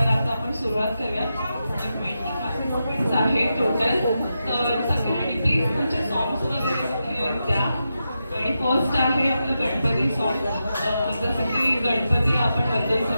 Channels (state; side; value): inverted; both; correlation -0.88